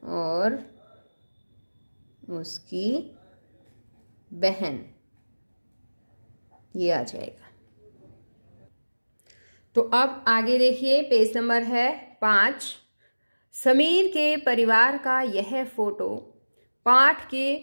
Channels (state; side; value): inverted; both; correlation -1.00